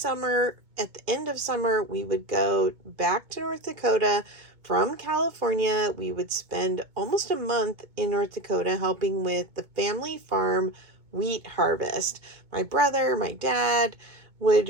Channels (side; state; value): left; late; 2.2 ms